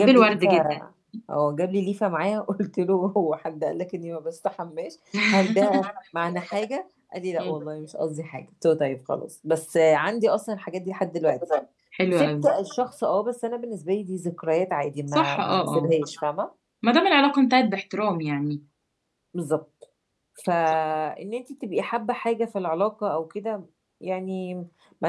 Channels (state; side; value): identical; both; correlation 1.00